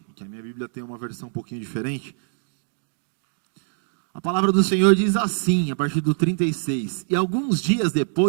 que a minha Bíblia tem uma versão um pouquinho diferente. A palavra do Senhor diz assim, a partir do 36. E alguns dias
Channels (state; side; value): silent; left; digital silence